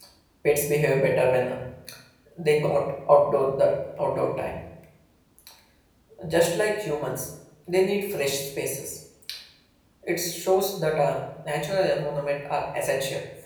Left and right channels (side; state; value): both; identical; correlation 1.00